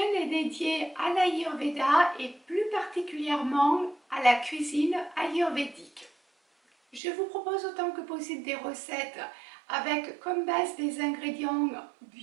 est dédiée à l'Ayurveda et plus particulièrement à la cuisine ayurvédique. Je vous propose autant que possible des recettes avec comme base des ingrédients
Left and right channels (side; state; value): left; drops out; at 7.0 s